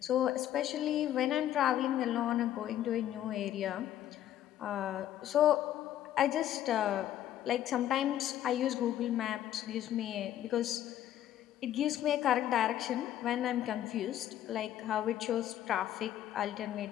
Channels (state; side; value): quieter; right; 11.9 dB